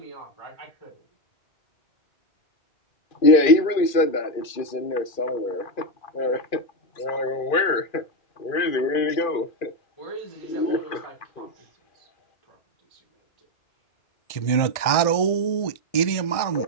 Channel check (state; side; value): late; right; 2.4 ms